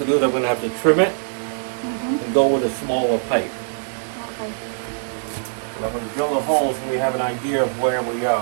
do is I'm gonna have to trim it and go with a smaller pipe. Okay. But I'm gonna drill the holes so we have an idea of where we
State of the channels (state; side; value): silent; left; digital silence